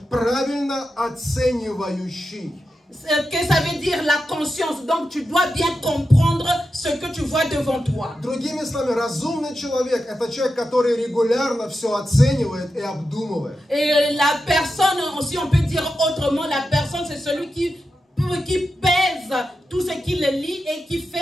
правильно оценивающий. Que ça veut dire la conscience. Donc tu dois bien comprendre ce que tu vois devant toi. Другими словами, разумный человек – это человек, который регулярно все оценивает и обдумывает. Et la personne, aussi on peut dire autrement, la personne c'est celui qui pèse tout ce qu'il lit et qui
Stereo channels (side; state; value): both; normal; correlation 0.89